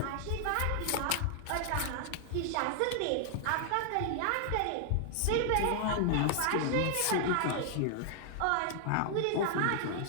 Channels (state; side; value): different; both; correlation 0.00